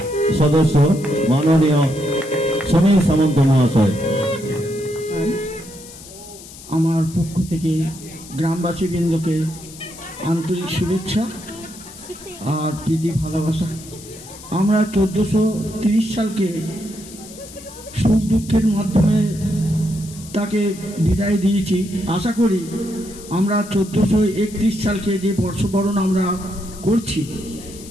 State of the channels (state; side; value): noise; left; hiss, 17 dB below the sound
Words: সদস্য মাননীয় সমীর সামন্ত মহাশয়, আমার পক্ষ থেকে গ্রামবাসীবৃন্দকে আন্তরিক শুভেচ্ছা আর প্রীতি ভালোবাসা। আমরা 1430 সালকে সুখ দুঃখের মাধ্যমে তাকে বিদায় দিয়েছি। আশা করি আমরা 1431 সালকে যে বর্ষবরণ আমরা করছি,